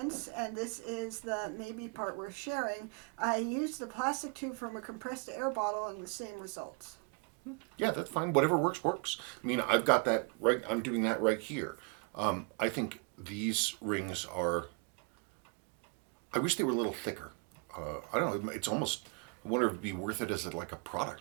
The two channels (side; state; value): left; quieter; 31.8 dB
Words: and this is the maybe part worth sharing, I used the plastic tube from a compressed air bottle and the same results. Yeah, that's fine. Whatever works, works. I mean, I've got that right. I'm doing that right here. I think these rings are. I wish they were a little thicker. I don't know. It's almost. I wonder if it'd be worth it as like a